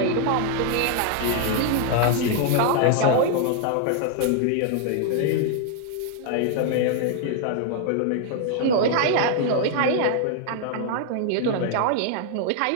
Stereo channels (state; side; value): different; both; correlation 0.00